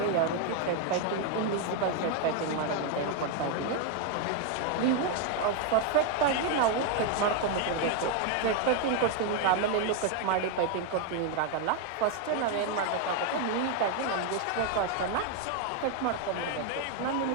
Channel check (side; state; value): both; different; correlation 0.01